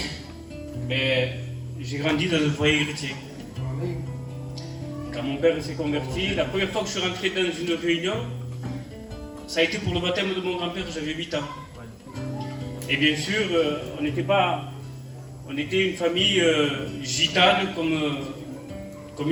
Mais j'ai grandi dans un foyer chrétien. Quand mon père s'est converti, la première fois que je suis rentré dans une réunion, ça a été pour le baptême de mon grand-père, j'avais 8 ans. Et bien sûr, on était une famille gitane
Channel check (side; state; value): both; identical; correlation 1.00